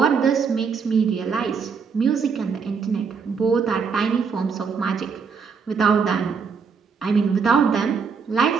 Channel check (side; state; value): left; quieter; 5.7 dB